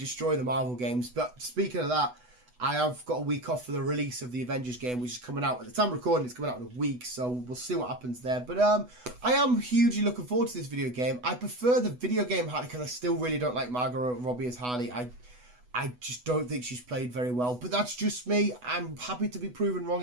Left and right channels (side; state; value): left; late; 8.1 ms